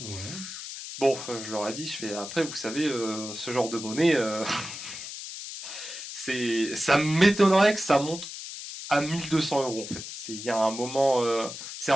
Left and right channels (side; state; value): left; noise; hiss, 9 dB below the sound